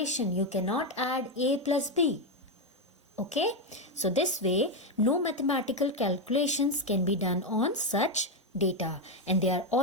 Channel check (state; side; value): normal; both; correlation 0.07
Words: You cannot add A plus B. Okay, so this way no mathematical calculations can be done on such data, and they are